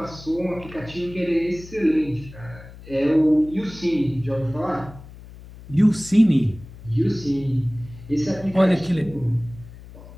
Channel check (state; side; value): noise; left; hum, 18 dB below the sound